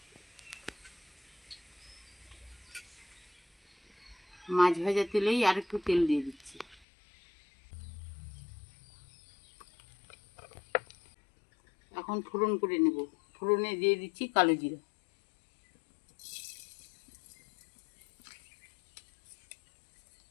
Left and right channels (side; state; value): right; drops out; at 6.8 s